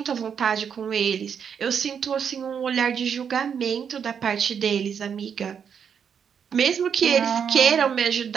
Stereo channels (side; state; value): left; quieter; 7.4 dB